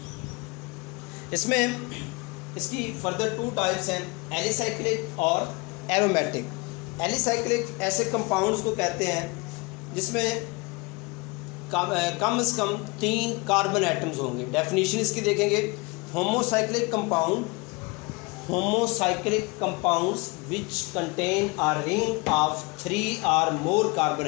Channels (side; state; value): right; quieter; 26.6 dB